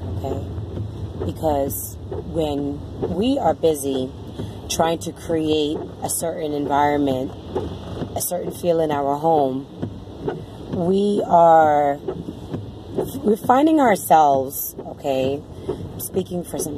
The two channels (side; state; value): both; identical; correlation 1.00